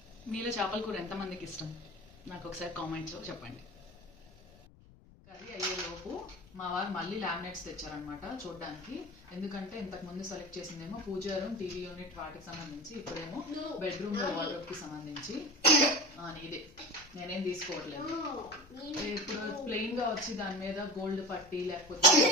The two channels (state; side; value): noise; left; rumble, 23 dB below the sound